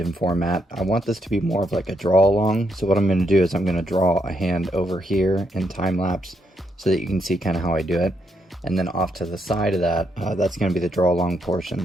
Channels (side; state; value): both; normal; correlation 0.77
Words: format. I want this to be more of like a draw along. So what I'm going to do is I'm going to draw a hand over here in time lapse so that you can see kind of how I do it. And then off to the side of that, that's going to be the draw along